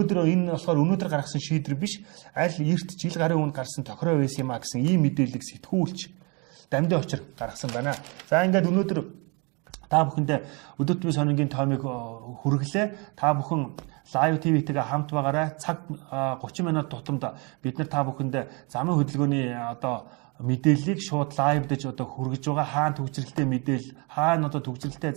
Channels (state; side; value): quieter; left; 30.8 dB